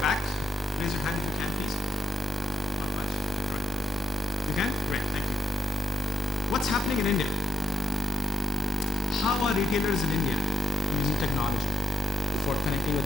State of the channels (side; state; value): both; normal; correlation 0.84